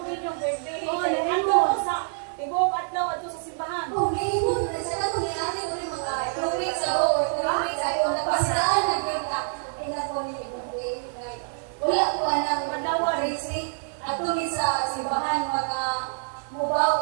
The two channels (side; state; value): left; silent; digital silence